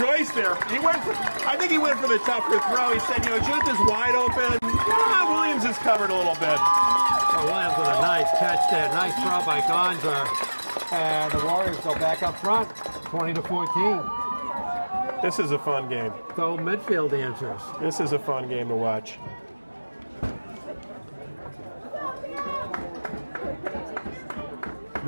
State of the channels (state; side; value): inverted; both; correlation -1.00